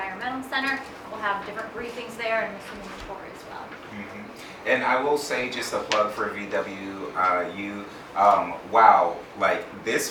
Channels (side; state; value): both; identical; correlation 1.00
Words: Center. We'll have different briefings there and some tour as well. And I will say, just a plug for VWU, wow, like this